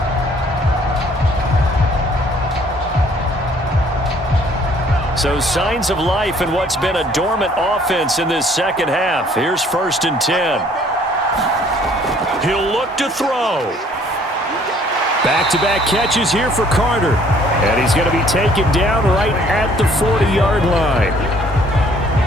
So signs of life in what's been a dormant offense in this second half. Here's 1st and 10. He'll look to throw. Back-to-back catches here for Carter. And he's going to be taken down right at the 40-yard line.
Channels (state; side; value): normal; both; correlation 0.59